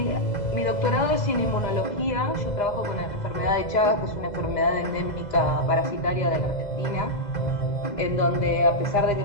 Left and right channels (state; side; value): late; right; 2.0 ms